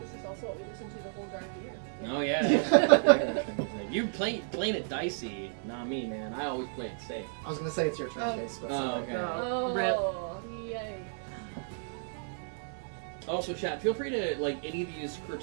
This is also what we listen to the whole drive here. Oh yeah. You playing it dicey, not me, man. I always play it safe. I was going to say it's your turn, Oh. Case, but Oh, something. okay. Oh, Rip. yay. Also, chat, feel free to like any of these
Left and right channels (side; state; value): left; silent; 56 dB below the other